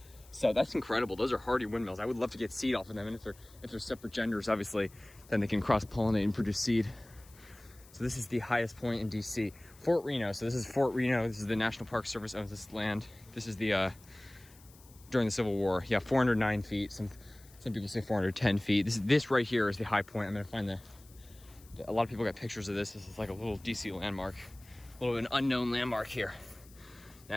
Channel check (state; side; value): noise; left; hiss, 25 dB below the sound